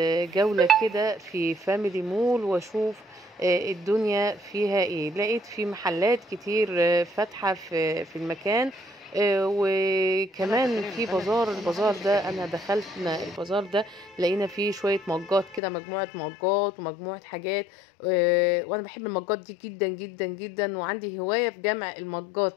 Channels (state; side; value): drops out; right; at 15.6 s